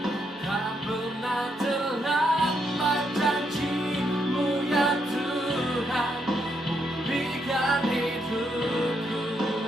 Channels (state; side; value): normal; both; correlation 0.78